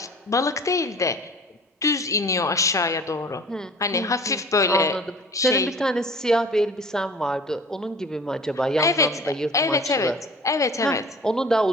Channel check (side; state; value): both; normal; correlation 0.45